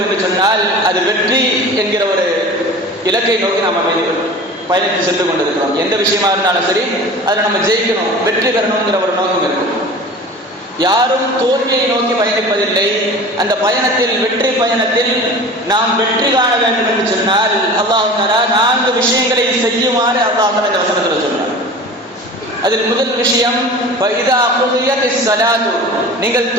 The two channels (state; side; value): normal; both; correlation 0.38